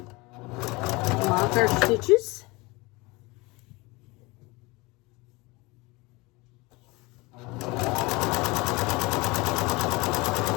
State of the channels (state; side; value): quieter; right; 24.3 dB